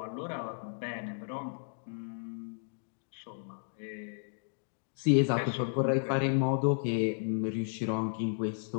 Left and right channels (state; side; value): silent; right; digital silence